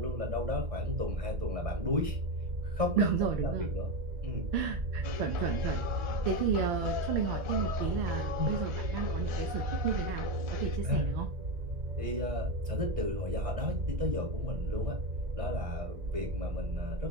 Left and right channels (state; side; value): late; left; 1.6 ms